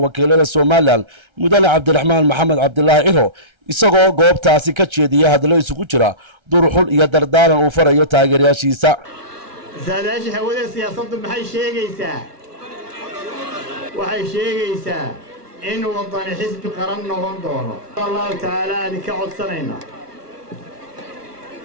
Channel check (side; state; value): left; late; 1.3 ms